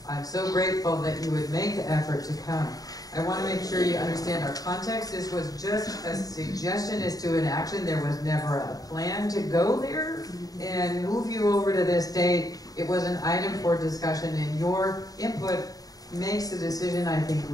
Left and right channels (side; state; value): right; late; 0.18 ms